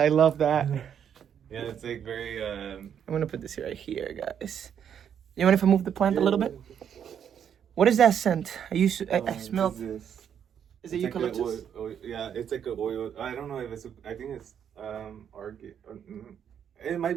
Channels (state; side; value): quieter; left; 8.5 dB